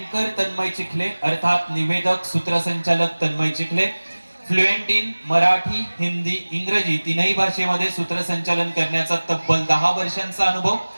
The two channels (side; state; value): both; inverted; correlation -1.00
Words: तन्मय चिखले, अर्थात निवेदक सूत्रसंचालक तन्मय चिखले. फ्लुएंट इन मराठी, हिंदी, इंग्रजी तीनही भाषेमध्ये सूत्रसंचालन करण्याचा तब्बल 10 वर्षांचा अनुभव.